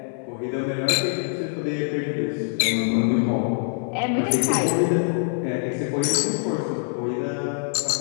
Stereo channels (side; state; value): right; silent; 55 dB below the other